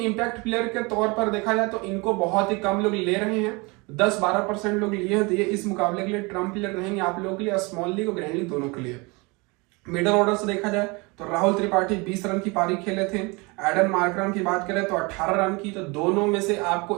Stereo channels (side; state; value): left; quieter; 27.1 dB